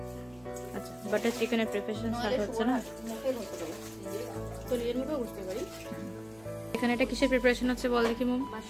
আচ্ছা, বাটার চিকেনের প্রিপারেশন স্টার্ট হচ্ছে না? তো এর মতো বুঝতে পারি। এখানে এটা কিসের প্রিপারেশন হচ্ছে বল দেখি মম?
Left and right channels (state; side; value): noise; left; hum, 26 dB below the sound